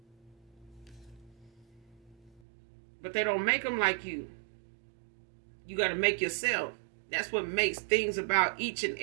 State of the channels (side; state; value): left; drops out; at 2.4 s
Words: But they don't make them like you. You got to make yourself. That's what makes things about each and